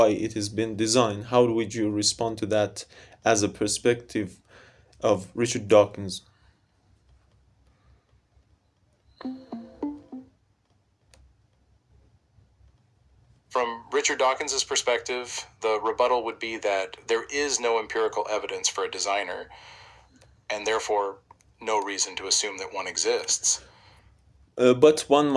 it has been designed. How would you respond to that as a perspective of Richard Dawkins? From Richard Dawkins's perspective, the rebuttal would be that there is no empirical evidence for a designer, and therefore no reason to assume that one exists. But one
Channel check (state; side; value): identical; both; correlation 1.00